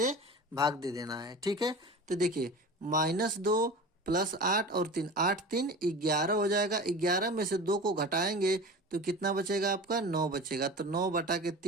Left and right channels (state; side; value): normal; both; correlation 0.35